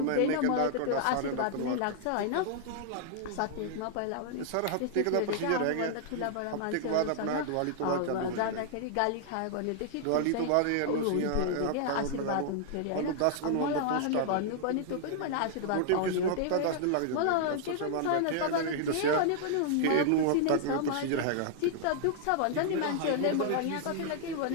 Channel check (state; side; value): different; both; correlation 0.00